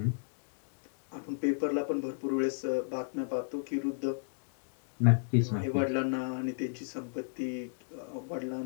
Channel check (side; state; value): right; silent; digital silence